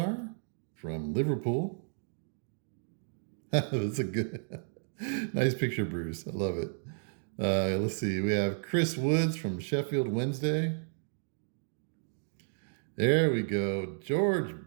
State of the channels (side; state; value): left; silent; digital silence